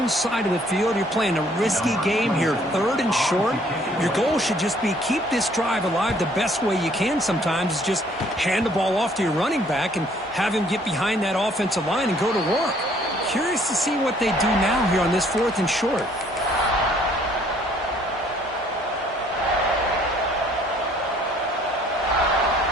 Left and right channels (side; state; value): both; normal; correlation 0.61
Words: side of the field, you're playing a risky game here, third and short. Your goal should just be keep this drive alive the best way you can sometimes is just hand the ball off to your running back and have him get behind that offensive line and go to work. Curious to see what they do now here on this fourth and short.